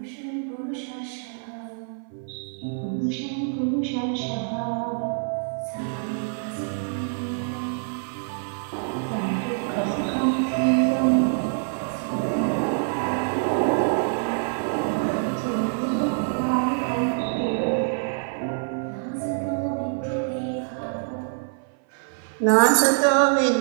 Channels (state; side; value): silent; left; 59 dB below the other